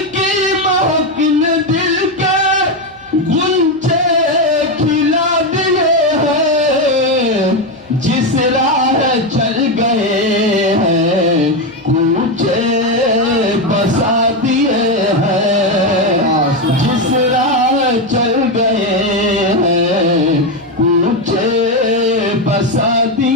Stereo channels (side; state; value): left; noise; hum, 29 dB below the sound